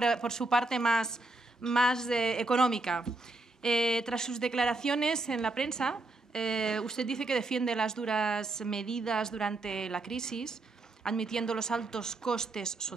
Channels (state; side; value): quieter; left; 3.0 dB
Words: su parte más económica. Tras sus declaraciones en la prensa, usted dice que defiende las duras medidas durante la crisis, admitiendo los altos costes